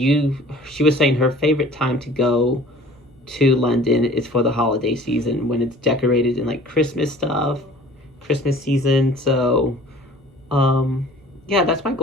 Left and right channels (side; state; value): both; normal; correlation 0.48